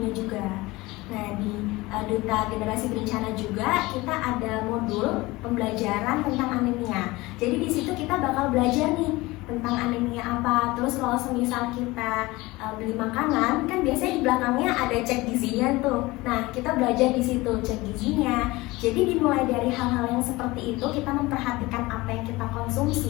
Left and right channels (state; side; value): quieter; right; 21.0 dB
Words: juga. Nah, di Duta Generasi Berencana juga kita ada modul pembelajaran tentang anemia. Jadi di situ kita bakal belajar nih tentang anemia apa. Terus kalau semisal kita beli makanan, kan biasanya di belakangnya ada cek gizinya tuh. Nah, kita belajar di situ cek gizinya. Jadi dimulai dari hal-hal yang seperti itu, kita memperhatikan apa yang kita